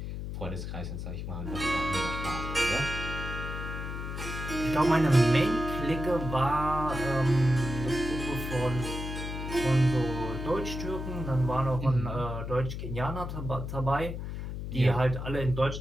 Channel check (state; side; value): noise; left; hum, 6 dB below the sound